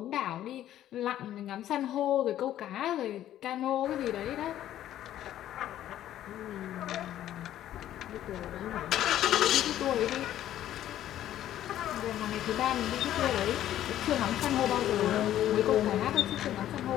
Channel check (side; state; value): right; quieter; 12.2 dB